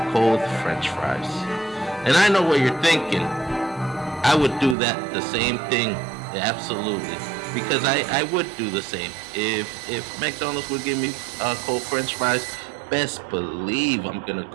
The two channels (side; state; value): left; drops out; at 4.8 s